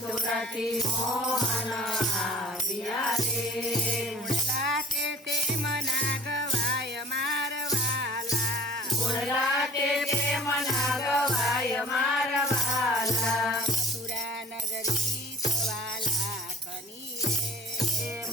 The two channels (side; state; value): both; normal; correlation 0.49